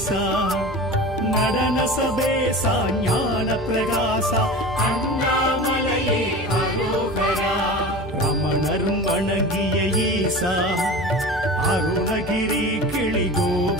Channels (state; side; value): normal; both; correlation 0.33